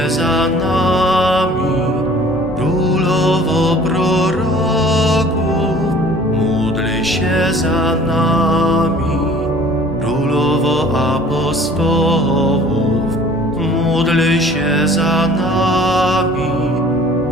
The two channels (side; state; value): both; normal; correlation 0.50